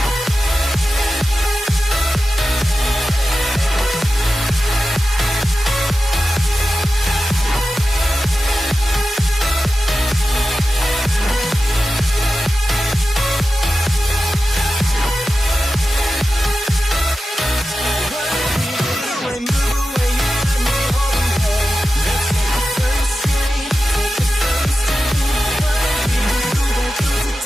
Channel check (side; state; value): both; normal; correlation 0.93